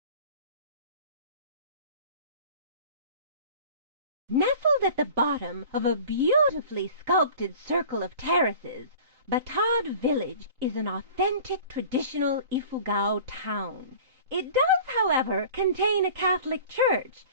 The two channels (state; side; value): late; left; 3.9 ms